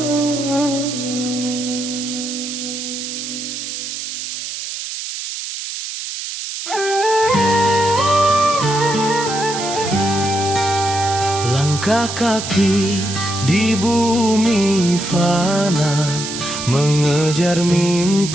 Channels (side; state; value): right; noise; hiss, 7 dB below the sound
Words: Langkah kaki di bumi fana, mengejar